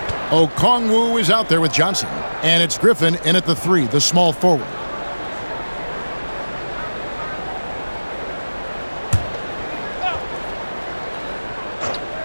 Okongwu is out there with Johnson. And it's Griffin in at the 3, the small forward.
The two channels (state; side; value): inverted; both; correlation -1.00